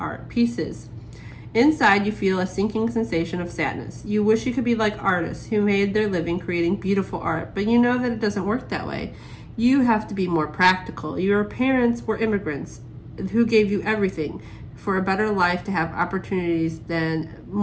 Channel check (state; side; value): identical; both; correlation 1.00